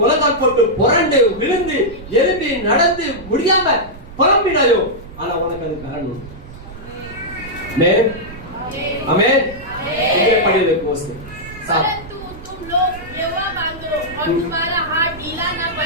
போட்டு புரண்டு விழுந்து எழும்பி நடந்து முடியாம புலம்பினாயோ ஆனா உனக்கு அது பலன் உண்டு ஆமென் ஆமென் இங்கே படியே கோஸ் परंतु तुम लोग यहोवा मांगो और तुम्हारा हाथ ढीला न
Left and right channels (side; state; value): right; noise; rumble, 16 dB below the sound